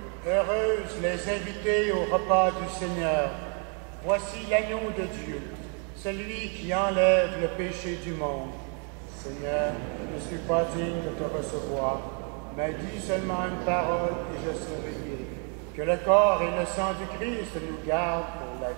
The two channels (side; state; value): left; quieter; 39.3 dB